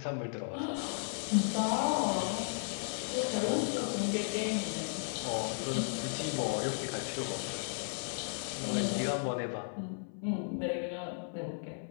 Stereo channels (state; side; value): silent; right; 54 dB below the other